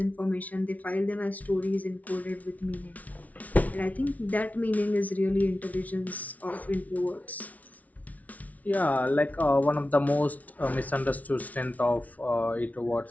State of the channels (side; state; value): right; late; 0.071 ms